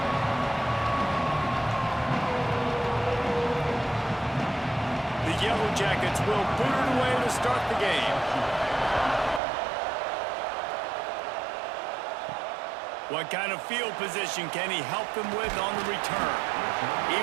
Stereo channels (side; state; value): left; drops out; at 9.4 s